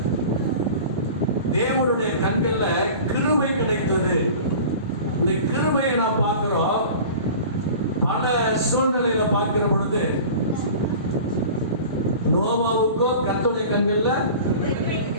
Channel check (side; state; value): both; inverted; correlation -0.39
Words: தேவனுடைய கண்கள்ல கிருபை கிடைத்தது. இந்த கிருபையை நாம் பார்க்கிறோம். பல சூழ்நிலையில பார்க்கிற பொழுது நோவாவுக்கோ கர்த்தருடைய கண்கள்ல